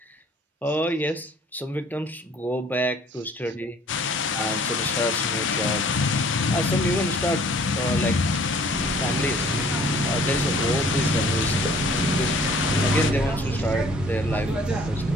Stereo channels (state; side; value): normal; both; correlation 0.55